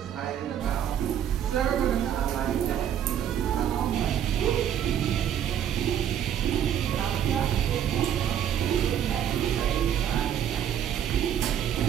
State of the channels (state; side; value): quieter; left; 9.7 dB